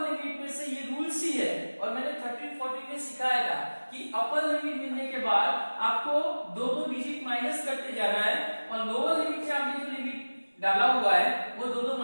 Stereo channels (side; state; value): both; inverted; correlation -1.00